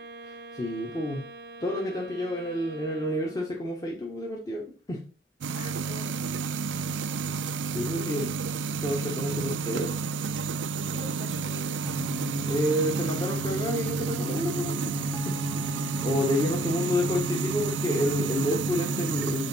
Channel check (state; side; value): normal; both; correlation 0.58